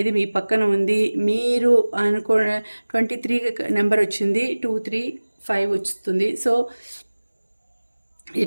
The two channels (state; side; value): inverted; both; correlation -1.00